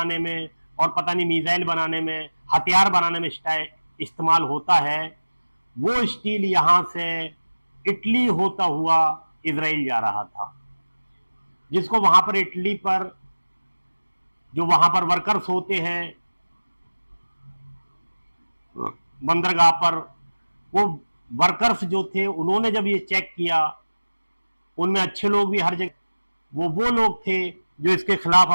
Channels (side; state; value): both; inverted; correlation -1.00